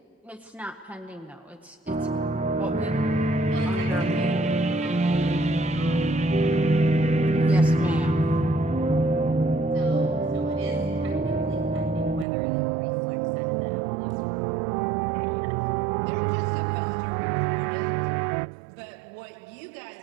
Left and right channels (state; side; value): drops out; left; at 12.2 s